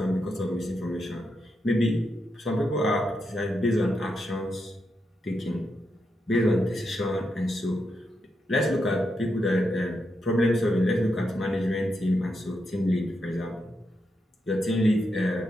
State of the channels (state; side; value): normal; both; correlation 0.84